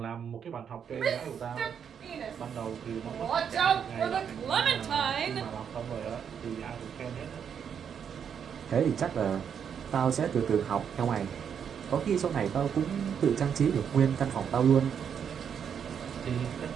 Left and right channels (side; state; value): left; quieter; 7.7 dB